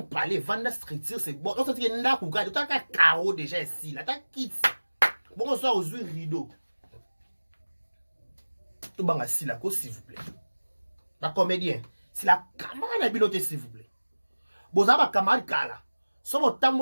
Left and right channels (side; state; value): both; inverted; correlation -1.00